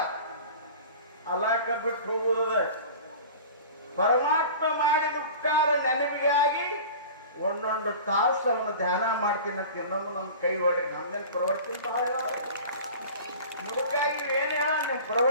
ಅಲಾಕ ಬಿಟ್ಟು ಹೋಗುವುದ ಪರಮಾತ್ಮ ಮಾಡಿದ ಉಪಕಾರ ನೆನಪಿಗಾಗಿ ಒಂದೊಂದು ತಾಸು ಅವನು ಧ್ಯಾನ ಮಾಡ್ತೀನಿ ಅಂತ ಇನ್ನೊಂದು ನಮ್ಮ ಕೈ ಹೊಡಿ. ನಮ್ದೇನು ಪ್ರವಚನ ಬಹಳ ಮುದುಕಾಗಿ ಏನ್ ಹೇಳ, ನಿಮ್ಮ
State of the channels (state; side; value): inverted; both; correlation -0.38